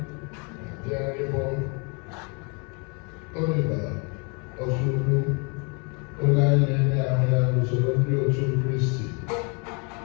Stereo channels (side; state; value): right; quieter; 34.5 dB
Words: bịa ịbụ Oliver Ozougwu, onye anyị na-enye ahụ ya n'usoro ndị otu Kristi.